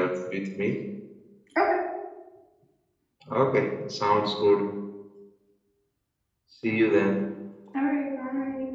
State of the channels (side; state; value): both; identical; correlation 1.00